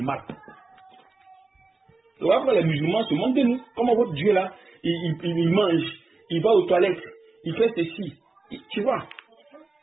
mal. Donc après les musulmans se moquent de nous. Comment votre Dieu là, il mange, il va aux toilettes, il fait ceci. Tu vois?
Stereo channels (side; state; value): left; quieter; 3.4 dB